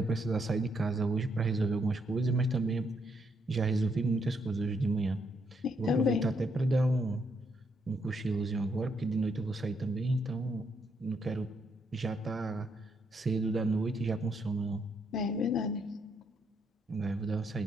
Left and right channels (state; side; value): normal; both; correlation 0.76